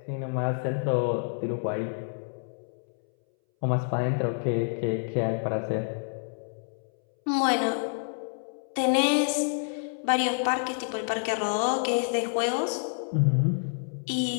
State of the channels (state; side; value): silent; right; 59 dB below the other